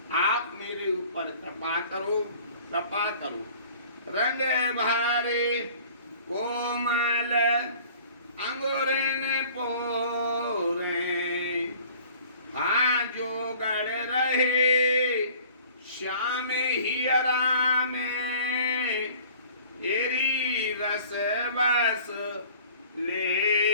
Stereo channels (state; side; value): inverted; both; correlation -0.49